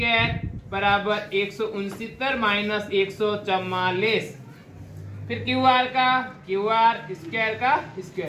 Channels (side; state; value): both; identical; correlation 1.00